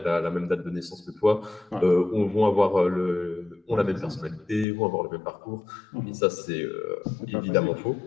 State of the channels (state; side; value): drops out; right; at 4.7 s